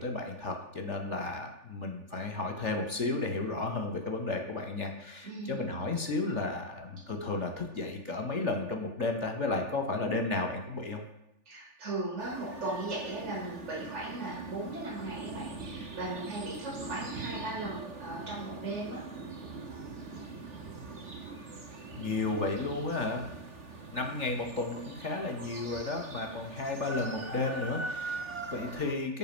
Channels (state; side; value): late; left; 3.4 ms